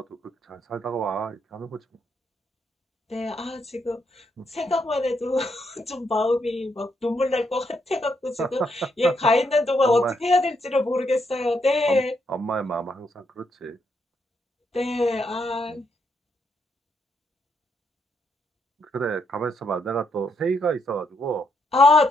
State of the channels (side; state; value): both; normal; correlation 0.77